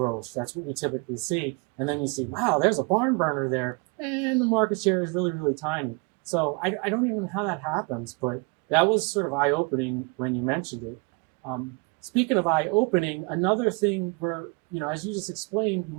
That's what we typically see. And then you see, wow, there's a barn burner there, and the market share is really, really tiny. So I don't even know how that happens, but that was sort of eye-opening when you mentioned it. Speaking of eye-opening, another thing where, as you just explained, you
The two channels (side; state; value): left; quieter; 31.2 dB